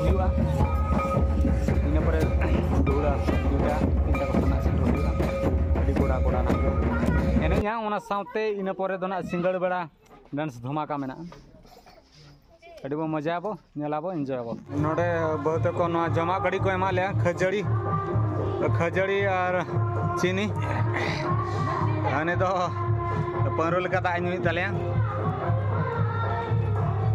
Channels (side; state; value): both; identical; correlation 1.00